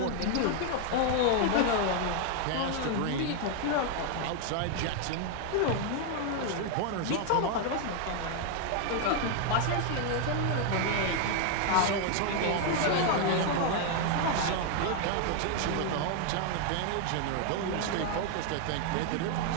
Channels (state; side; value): different; both; correlation 0.00